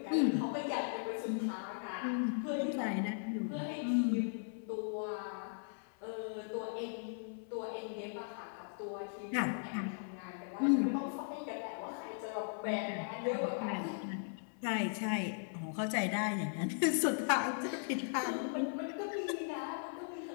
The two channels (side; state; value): right; silent; 52 dB below the other